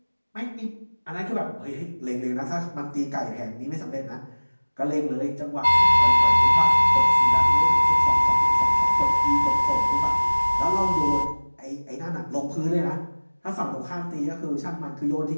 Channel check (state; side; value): inverted; both; correlation -1.00